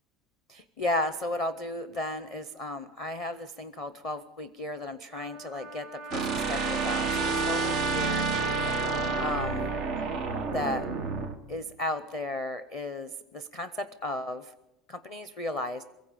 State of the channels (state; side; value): normal; both; correlation 0.31